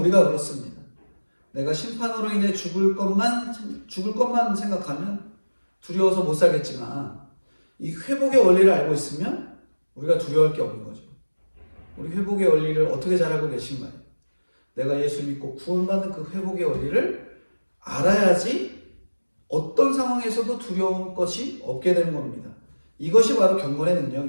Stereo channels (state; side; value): inverted; both; correlation -1.00